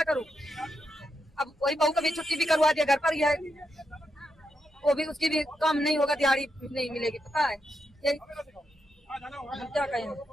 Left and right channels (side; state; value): both; normal; correlation 0.83